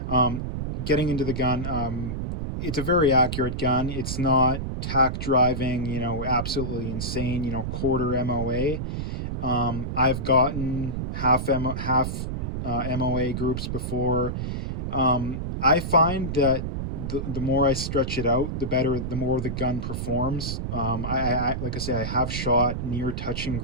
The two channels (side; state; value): right; noise; rumble, 3 dB below the sound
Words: Getting into the gun, it's a very accurate gun. It's not tack driving, absolutely insane, quarter MOA. I've gotten half MOA groups before. I find that the more I stretch it out, the more the gun performs. Like I say, I have shot near touching